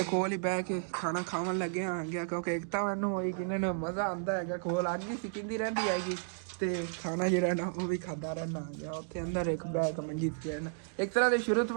ਕੋਲ ਹੀ ਬਹਿ ਕੇ ਖਾਣਾ ਖਾਣ ਲੱਗਿਆ ਆ ਗਿਆ ਕਿਉਂਕਿ ਇੱਕ ਤਾਂ ਮੈਨੂੰ ਹੋਈ ਕਿ ਇਹਨਾਂ ਨੂੰ ਮਜ਼ਾ ਆਉਂਦਾ ਹੈਗਾ ਕੋਲ ਅੱਗ ਹੀ ਸਿੱਕਦੀ ਰਹਿੰਦੀ ਹੈਗੀ ਤੇ ਖਾਣਾ ਜਿਹੜਾ ਨਾ ਉਹ ਵੀ ਖਾਂਦਾ ਰਹਿਣਾ ਆ ਗਿਆ ਉੱਥੇ ਅੰਦਰ ਇੱਕ ਬਹਿ ਕੇ ਮੰਜੀ ਤੇ ਰਹਿਣਾ ਇੱਕ ਤਰ੍ਹਾਂ ਦੇ ਸ਼ੁਰੂ ਤੋਂ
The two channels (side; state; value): left; silent; digital silence